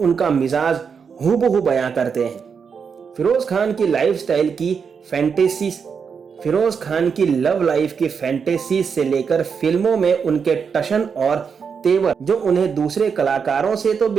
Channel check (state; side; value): quieter; left; 6.2 dB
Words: उनका मिजाज हूबहू बयां करते हैं। फिरोज़ खान की लाइफस्टाइल की फैंटेसीज, फिरोज़ खान की लव लाइफ की फैंटेसीज से लेकर फिल्मों में उनके टशन और तेवर, जो उन्हें दूसरे कलाकारों से तो